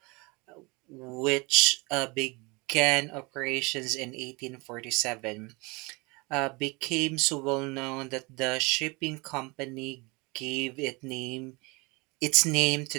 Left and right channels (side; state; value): left; quieter; 26.9 dB